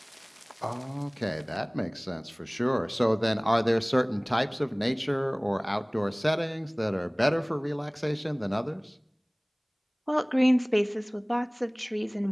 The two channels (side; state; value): both; identical; correlation 1.00